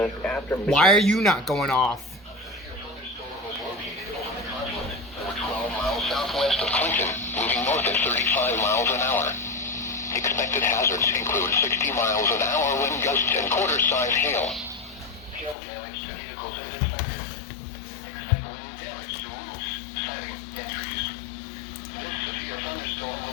after Why are you not going off? over 12 miles southwest of Clinton, moving north at 35 miles an hour. Expected hazards include 60 miles an hour wind gusts and quarter-size hail. Hail damage to vehicles is expected. Expect wind damage to roofs, siding, and trees. This severe thunderstorm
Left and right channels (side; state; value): right; drops out; at 15.6 s